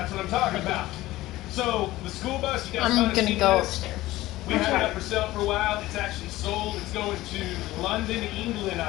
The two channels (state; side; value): quieter; right; 17.1 dB